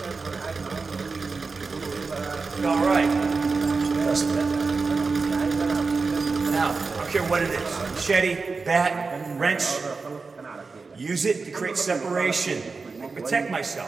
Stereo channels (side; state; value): left; quieter; 4.3 dB